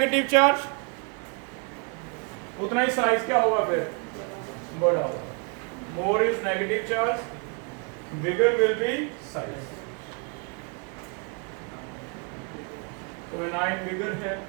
charge, उतना ही size क्या होगा? फिर बड़ा होगा। More is negative charge, bigger will be size. तो anion bigger है,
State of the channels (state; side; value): quieter; left; 35.9 dB